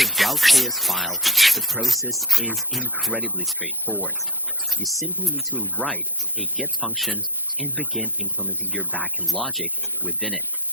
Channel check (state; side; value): normal; both; correlation 0.30